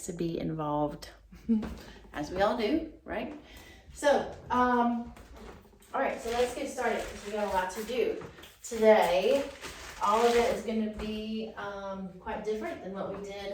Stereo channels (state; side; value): identical; both; correlation 1.00